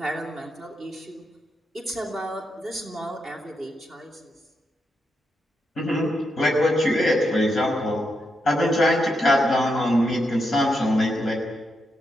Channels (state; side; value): normal; both; correlation 0.83